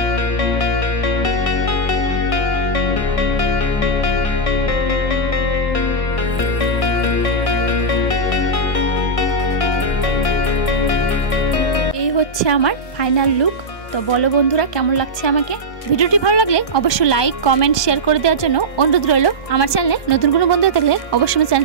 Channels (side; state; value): right; late; 1.2 ms